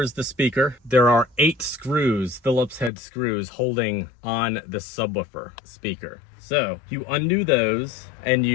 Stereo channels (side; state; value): right; drops out; at 2.9 s